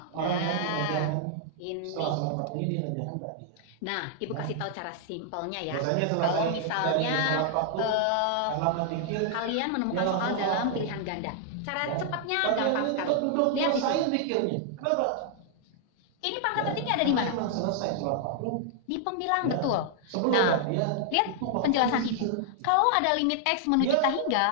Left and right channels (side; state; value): both; different; correlation 0.00